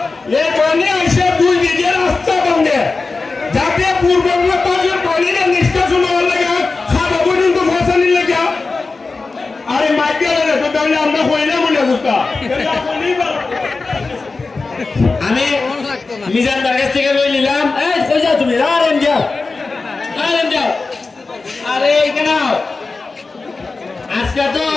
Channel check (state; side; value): quieter; right; 3.9 dB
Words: এখানে এসে 2 বিঘে রাস্তা ভাঙে যাতে পূর্ববঙ্গের পানির নিষ্কাশন হওয়ার লাগে খাওয়া পর্যন্ত ফসানির লাগে আরে মাইকে তো তাহলে আমরা কইলে মনে বুঝতা আমি মিজান বাগের থেকে লই নিলাম এই কই যাও তুমি আরেন যাও আরে এখানে আজকে তো